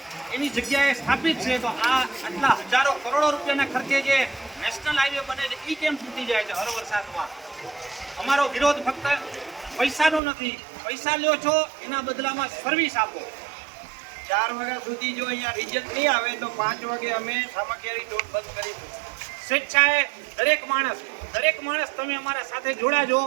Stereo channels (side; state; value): left; drops out; at 10.2 s